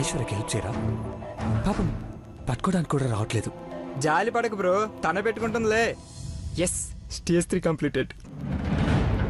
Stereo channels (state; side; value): identical; both; correlation 1.00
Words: ఐశ్వర్యకి హెల్ప్ చేయరా? పాపం పట్టుకోవడానికి కూడా రావట్లేదు. జాలి పడకు బ్రో, తన పెట్టుకుంటుందిలే. Yes, stage 3 completed.